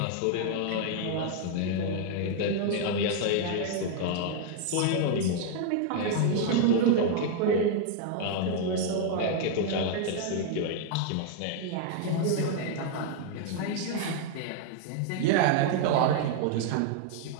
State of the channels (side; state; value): both; different; correlation 0.00